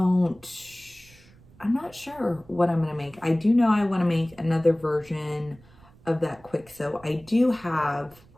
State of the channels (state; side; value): noise; right; rumble, 26 dB below the sound